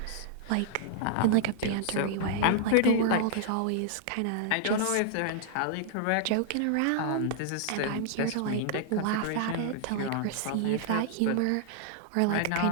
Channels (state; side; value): different; both; correlation -0.01